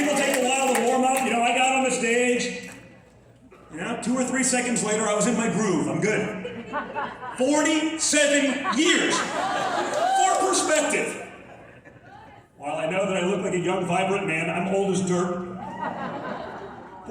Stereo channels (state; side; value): identical; both; correlation 1.00